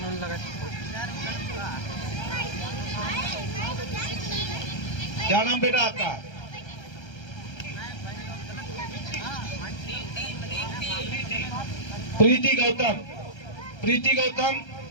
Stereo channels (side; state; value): right; late; 1.3 ms